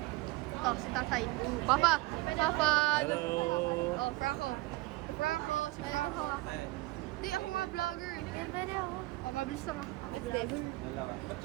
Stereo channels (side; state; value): left; quieter; 20.8 dB